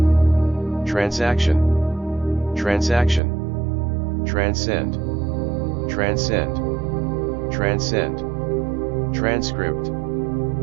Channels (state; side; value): drops out; left; at 3.2 s